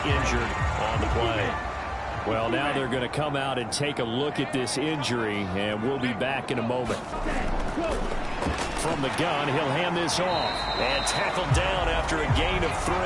injured on the play. Well, now they're going to come out and take a look at this injury, and we'll be back in a moment. From the gun, he'll hand this off. And tackled down after a gain of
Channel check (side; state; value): both; identical; correlation 1.00